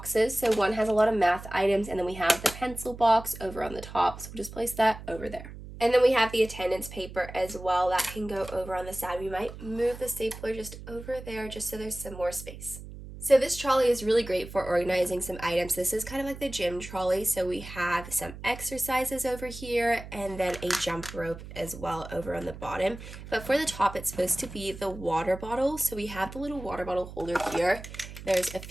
So one has a lot of math items, and then we have the pencil box over on the top. So we'll just place that over there. And then we have the attendance paper as well. That can go over on the side. We might move the stapler just over there just so there's some more space. So this trolley is really great for organizing some items. This is kind of like the gym trolley. So we have some exercises over here and then a jump rope as well over on the bottom. But for the top, it's supposed to be the water bottle. So we have the little water bottle holder here. There's a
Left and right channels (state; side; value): noise; right; hum, 13 dB below the sound